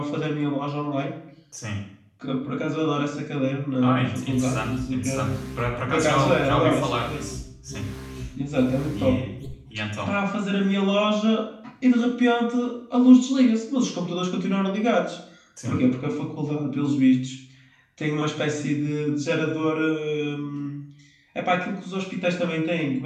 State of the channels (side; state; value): both; identical; correlation 1.00